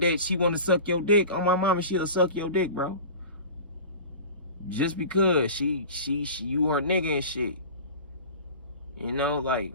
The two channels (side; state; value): both; inverted; correlation -0.37